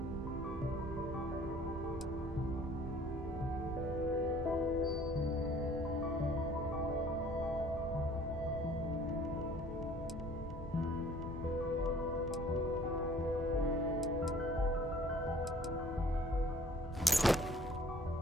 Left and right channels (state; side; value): normal; both; correlation 0.53